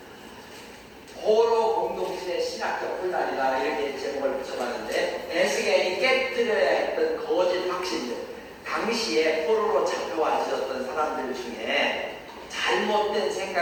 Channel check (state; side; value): identical; both; correlation 1.00